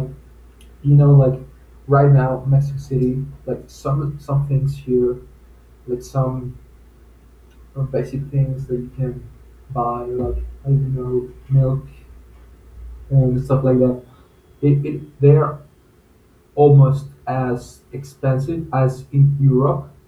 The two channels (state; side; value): identical; both; correlation 1.00